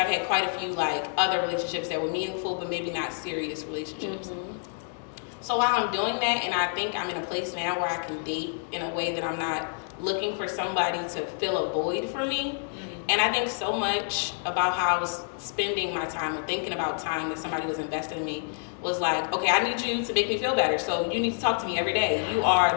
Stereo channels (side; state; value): right; silent; 57 dB below the other